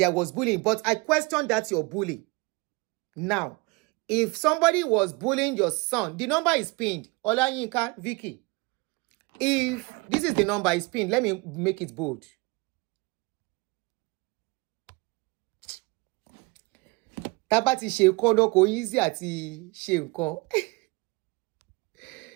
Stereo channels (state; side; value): quieter; left; 26.2 dB